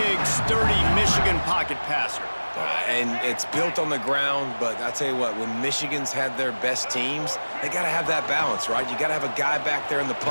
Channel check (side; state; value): both; inverted; correlation -1.00